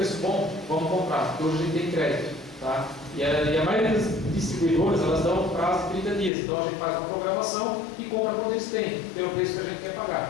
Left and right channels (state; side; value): drops out; right; at 6.3 s